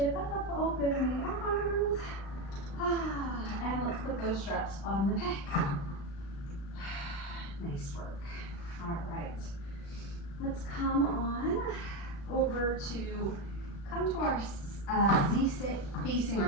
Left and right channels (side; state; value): right; late; 36 ms